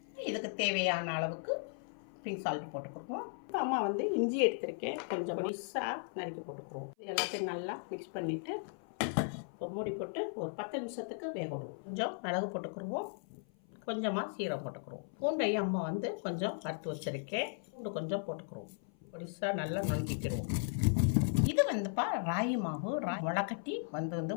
இதுக்கு தேவையான அளவுக்கு பிங்க் சால்ட் போட்டுக்குருவோம். இப்போ அம்மா வந்து இஞ்சி எடுத்திருக்கேன், கொஞ்சம் பொடிசாக நறுக்கி போட்டுக்குருவோம். இது எல்லாத்தையும் நல்லா மிக்ஸ் பண்ணிவிட்டு மூடி போட்டு ஒரு 10 நிமிஷத்துக்கு வேக விடுவோம். கொஞ்சம் மிளகு போட்டுக்குருவோம், கொஞ்சமாக சீரகம் போட்டுக்குருவோம். பூண்டையும் அம்மா வந்து கொஞ்சம் வறுத்து வச்சுருக்கேன், பூண்டு கொஞ்சம் போட்டுக்குருவோம். பொடிசாக நல்லா நுணுக்கிக்கிடுவோம். இது வந்துப்பா ராகி மாவு, முளைக்கட்டி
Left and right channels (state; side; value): silent; right; 53 dB below the other